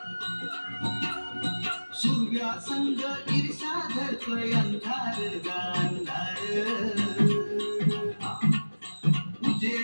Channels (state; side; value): inverted; both; correlation -1.00